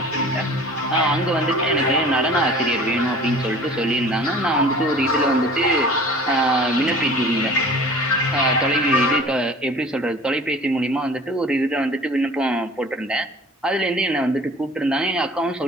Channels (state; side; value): normal; both; correlation 0.45